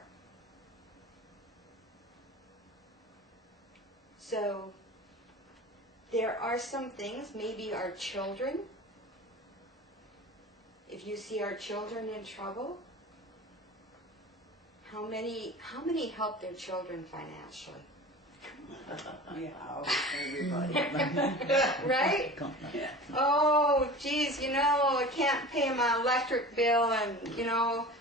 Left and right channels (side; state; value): both; normal; correlation 0.37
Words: So, there are some things, maybe our children, if you see our children in trouble, how many help their children financially? Yeah, everybody. Right? Yeah. Oh, geez, I can't pay my electric bill, and,